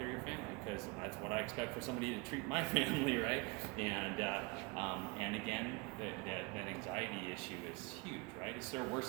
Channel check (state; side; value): quieter; left; 27.4 dB